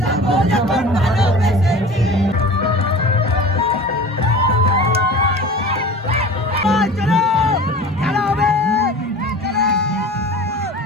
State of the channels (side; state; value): both; normal; correlation 0.38